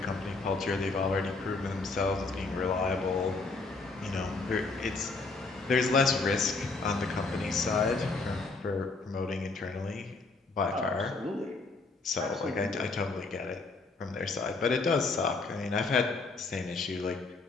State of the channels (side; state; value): right; quieter; 3.8 dB